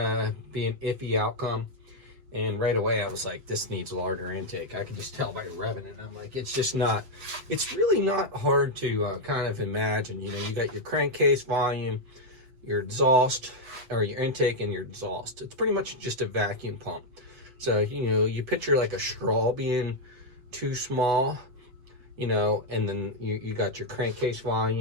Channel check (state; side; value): late; left; 7.9 ms